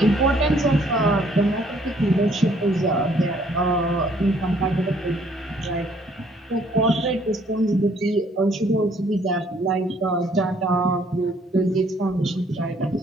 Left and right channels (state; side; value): normal; both; correlation 0.63